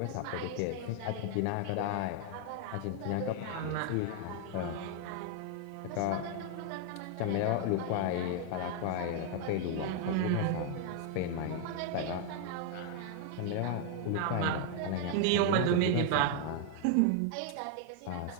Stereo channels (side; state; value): both; different; correlation 0.00